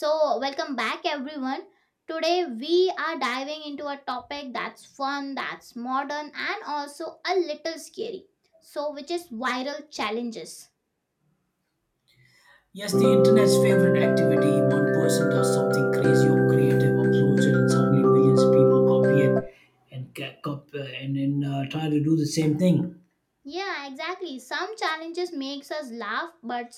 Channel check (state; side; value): identical; both; correlation 1.00